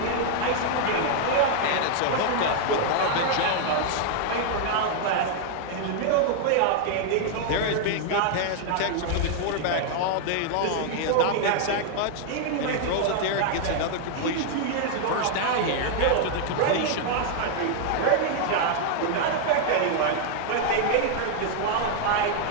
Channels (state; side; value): different; both; correlation 0.00